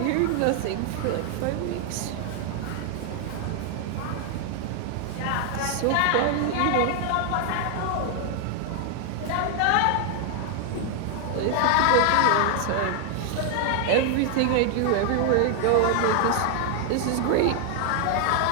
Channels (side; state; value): both; different; correlation 0.00